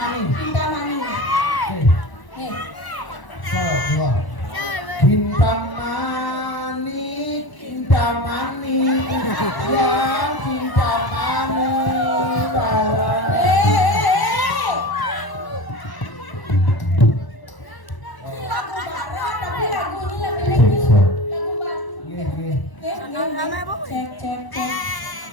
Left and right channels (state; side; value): late; right; 1.0 ms